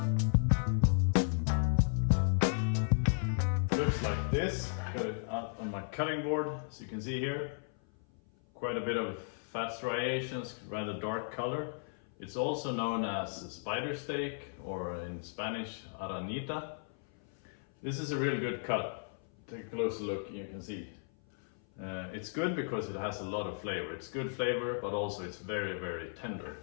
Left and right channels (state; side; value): silent; right; 54 dB below the other